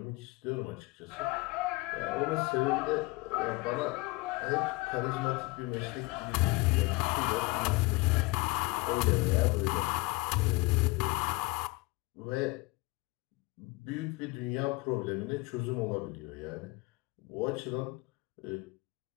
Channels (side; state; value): right; quieter; 23.9 dB